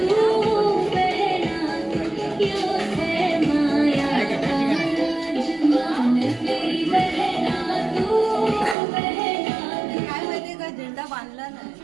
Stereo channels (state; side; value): drops out; left; at 8.8 s